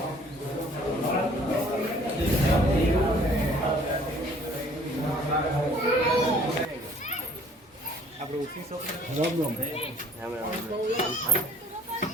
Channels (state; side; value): normal; both; correlation 0.55